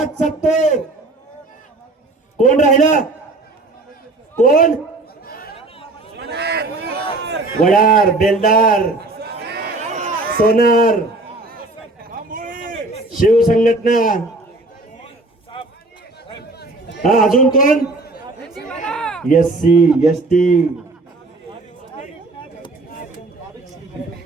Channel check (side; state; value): left; quieter; 3.0 dB